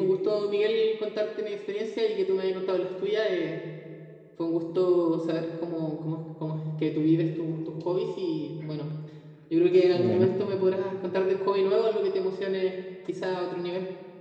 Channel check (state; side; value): identical; both; correlation 1.00